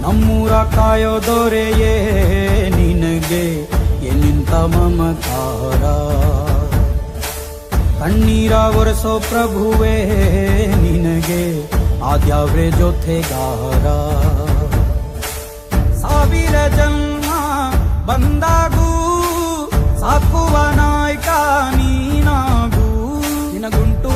ನಮ್ಮೂರ ಕಾಯೋ ದೊರೆಯೇ ನಿನಗೆ ಎನ್ನಿಂತ ಮಮಕಾರ, ಕಣ್ಣೀರ ಒರೆಸೋ ಪ್ರಭುವೇ ನಿನಗೆ ಆದ್ಯಾವ್ರೆ ಜೊತೆಗಾರ. ಸಾವಿರ ಜನ್ಮ ಬಂದಾಗೂ ಸಾಕುವ ನಾಯಕ ನೀನಾಗೂ, ನಿನಗುಂಟು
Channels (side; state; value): both; identical; correlation 1.00